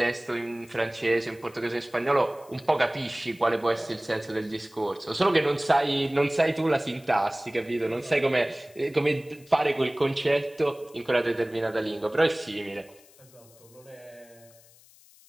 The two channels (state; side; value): noise; left; hiss, 26 dB below the sound